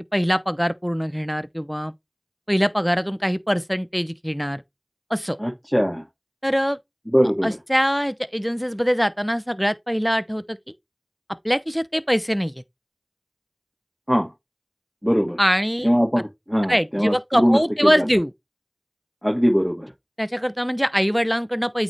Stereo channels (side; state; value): both; identical; correlation 1.00